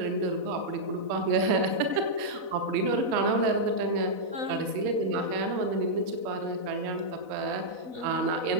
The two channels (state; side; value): late; left; 4.0 ms